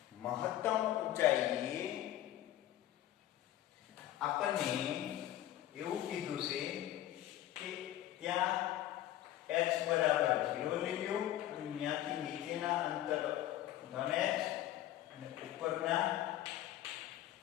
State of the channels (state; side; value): quieter; right; 13.4 dB